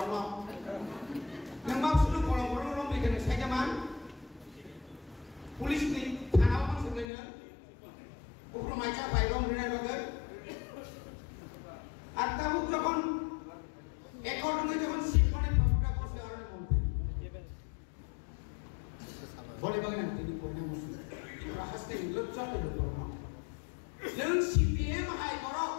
loh, yang maksud lu bolong-bolong loh, mereka ni saya zaman, polis ni, tanah orang sebenarnya, ukro macam bayrong ni bagai. আর তাবুক যখন একর্ডনে যখন শিখনে প্রভুটা করছে আর মন্ত্রী বলে বাগনা তিনি কোনে মুসলিম রাহাসতে লজ্জা পেল করো নং সিপিএম হাই বড়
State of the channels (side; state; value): right; drops out; at 7.1 s